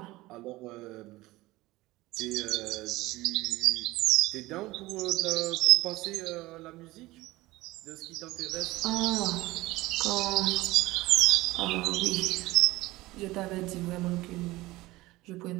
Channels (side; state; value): left; quieter; 19.2 dB